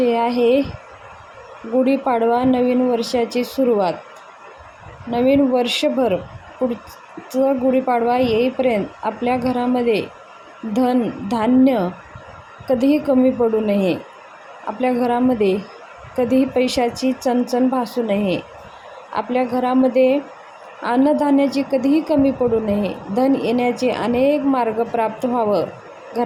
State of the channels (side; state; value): both; identical; correlation 1.00